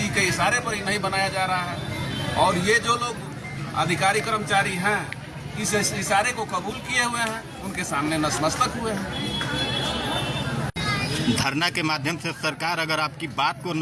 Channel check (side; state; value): both; identical; correlation 1.00